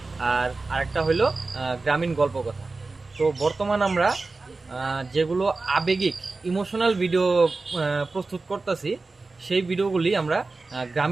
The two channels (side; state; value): left; quieter; 3.7 dB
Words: আর আরেকটা হলো গ্রামীণ গল্প কথা। তো বর্তমান আমরা যেগুলো আবেগিক ইমোশনাল ভিডিও প্রস্তুত করতেছি, সেই ভিডিওগুলি আমরা